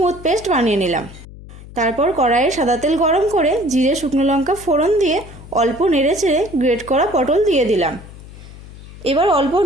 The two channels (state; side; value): noise; left; hum, 17 dB below the sound